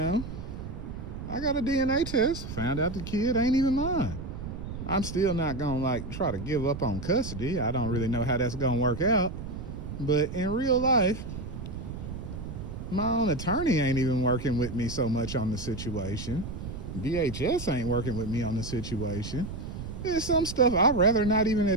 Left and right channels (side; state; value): right; noise; rumble, 8 dB below the sound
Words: I got a DNA test, found out the kid ain't even mine. I'm still not gonna try to give up on custody. I don't really know how that's gonna work out. But in real life, my own attorney ain't even working with me so much on the situation. DHS ain't working with me on the situation. There's some stuff I'd rather not even